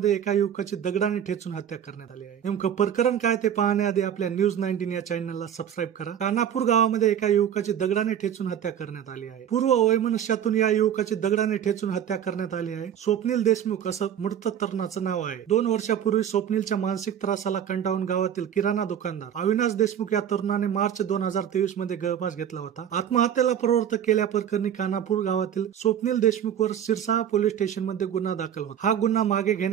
एका युवकाची दगडाने ठेचून हत्या करण्यात आली आहे. नेमकं प्रकरण काय ते पाहण्याआधी आपल्या न्यूज 19 या चॅनलला सबस्क्राईब करा. कानापूर गावामध्ये एका युवकाची दगडाने ठेचून हत्या करण्यात आली आहे. पूर्व वैमनस्यातून या युवकाची दगडाने ठेचून हत्या करण्यात आली आहे. स्वप्नील देशमुख असं मृत तरुणाचं नाव आहे. 2 वर्षापूर्वी स्वप्नीलच्या मानसिक त्रासाला कंटाळून गावातील किराणा दुकानदार अविनाश देशमुख या तरुणाने मार्च 2023 मध्ये गळफास घेतला होता. आत्महत्येला प्रवृत्त केल्याप्रकरणी कानापूर गावातील स्वप्नील देशमुखवर सिरसा पोलीस स्टेशन मध्ये गुन्हा दाखल होता. हा गुन्हा मागे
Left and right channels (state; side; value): quieter; left; 9.4 dB